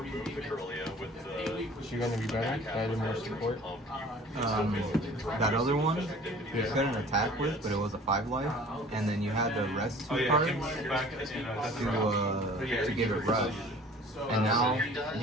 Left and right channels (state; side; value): normal; both; correlation 0.48